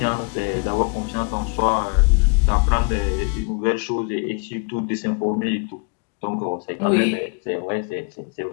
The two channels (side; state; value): right; quieter; 34.5 dB